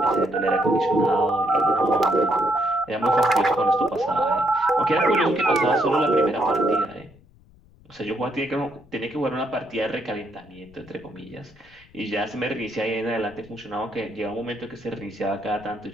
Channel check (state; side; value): noise; left; rumble, 27 dB below the sound